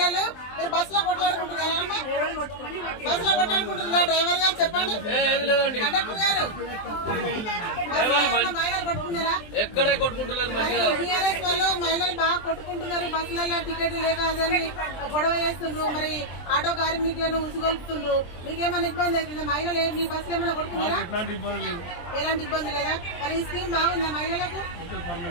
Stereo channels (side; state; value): right; late; 23 ms